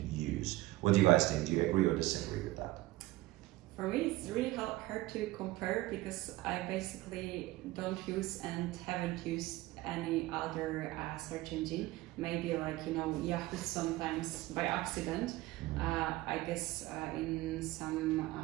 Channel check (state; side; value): quieter; left; 18.3 dB